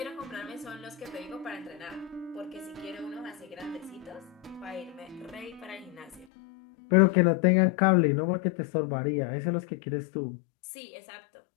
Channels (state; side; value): drops out; right; at 6.2 s